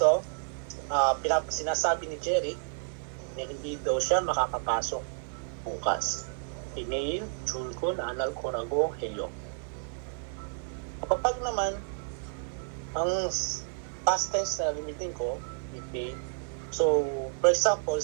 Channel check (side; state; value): left; silent; 57 dB below the other